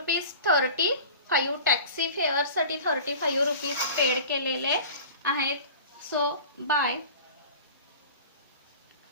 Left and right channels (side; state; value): both; inverted; correlation -0.39